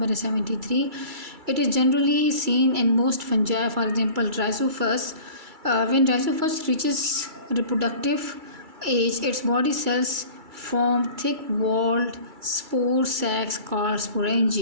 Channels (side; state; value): left; late; 2.3 ms